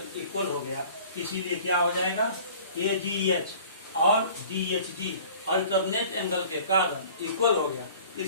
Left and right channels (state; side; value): inverted; both; correlation -0.48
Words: इक्वल हो गया, इसीलिए क्या हो जाएगा, AGH और DHG अल्टरनेट एंगल के कारण इक्वल हो गया,